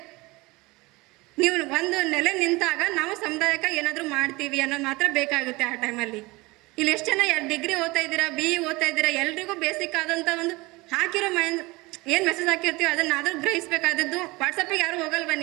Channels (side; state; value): left; quieter; 22.7 dB